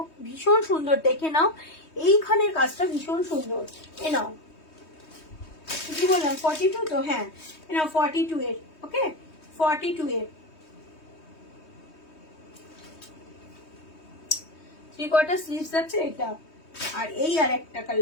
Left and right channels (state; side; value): late; right; 3.2 ms